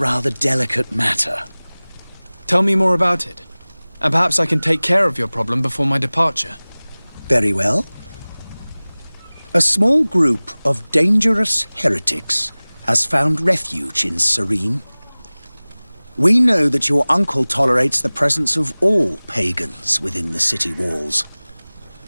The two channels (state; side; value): inverted; both; correlation -1.00